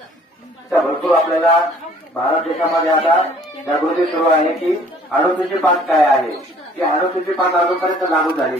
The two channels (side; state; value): both; normal; correlation 0.56